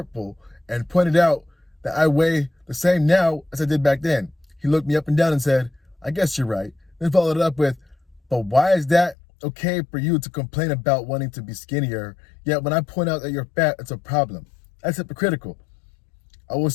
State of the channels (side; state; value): right; drops out; at 9.2 s